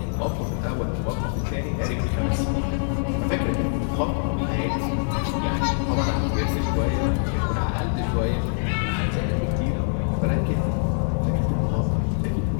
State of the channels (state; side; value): silent; right; 61 dB below the other